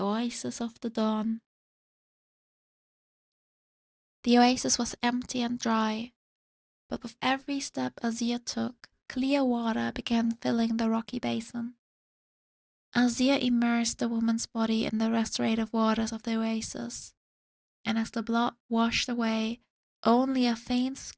oasis of the dawn. The oasis was empty and dry, but with every step Azir took, clear water began filling the rocky basin. Azir immersed the woman's body in the restorative waters of the oasis, and as the blood washed away, only a faint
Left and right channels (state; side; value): identical; both; correlation 1.00